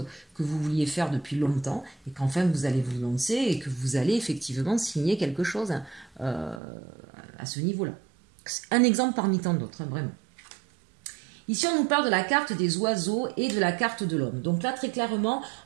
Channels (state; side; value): drops out; left; at 6.6 s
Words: que vous vouliez faire depuis longtemps, et qu'enfin vous allez vous lancer, et que vous allez effectivement signer quelque chose à ce niveau-là. Un exemple parmi tant d'autres, hein, vraiment. Ici, on nous parle de la carte des oiseaux et de la carte de l'homme. Donc là, très clairement,